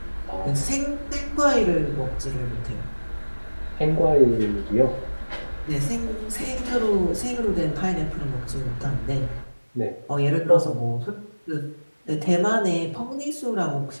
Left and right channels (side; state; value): both; inverted; correlation -1.00